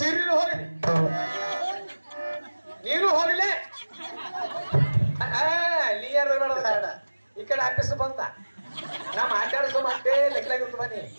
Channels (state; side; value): inverted; both; correlation -1.00